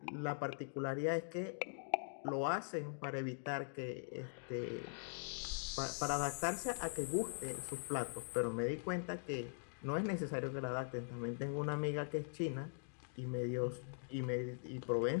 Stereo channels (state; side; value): silent; right; digital silence